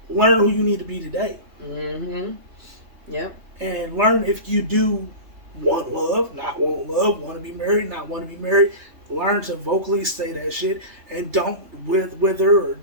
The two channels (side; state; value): left; late; 3.3 ms